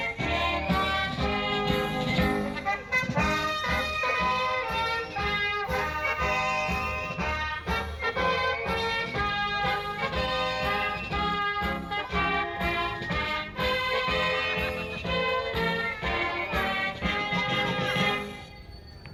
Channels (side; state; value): both; identical; correlation 1.00